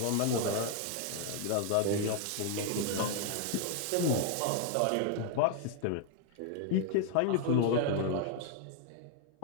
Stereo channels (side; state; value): both; different; correlation 0.00